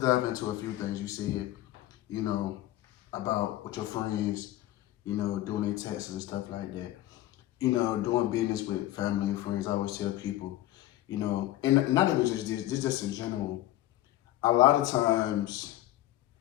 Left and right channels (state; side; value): quieter; right; 15.0 dB